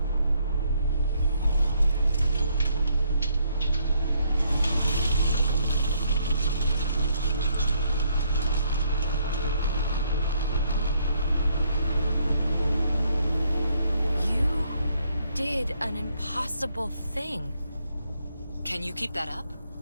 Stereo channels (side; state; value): both; inverted; correlation -0.71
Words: Did an impossible thing. Can you keep that up?